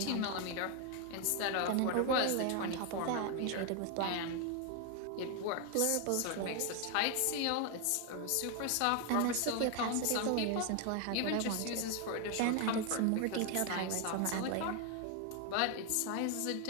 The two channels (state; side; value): different; both; correlation 0.01